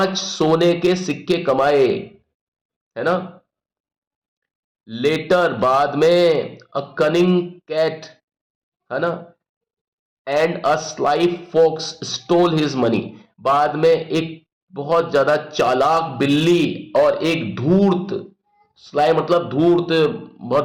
सोने के सिक्के कमाए, है ना। लेटर बाद में, अ कनिंग कैट, है ना, and a sly fox stole his money. बाद में एक बहुत ज्यादा चालाक बिल्ली और एक धूर्त, स्लाई मतलब धूर्त,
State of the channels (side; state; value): both; identical; correlation 1.00